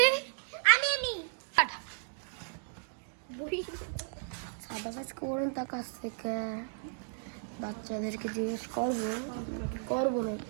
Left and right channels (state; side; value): silent; left; digital silence